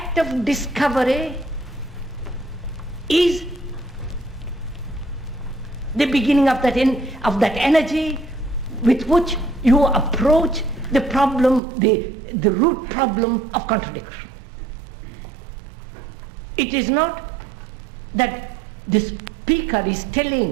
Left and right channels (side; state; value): left; drops out; at 11.6 s